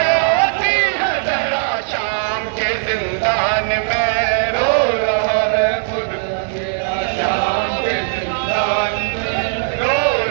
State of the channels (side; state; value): left; silent; 67 dB below the other